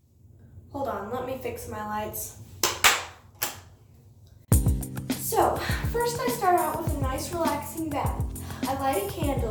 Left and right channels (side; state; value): both; identical; correlation 1.00